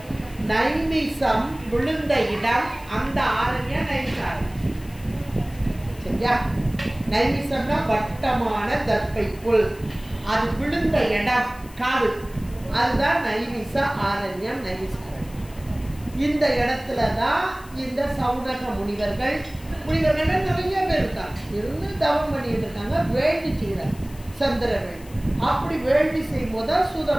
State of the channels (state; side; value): noise; left; hiss, 22 dB below the sound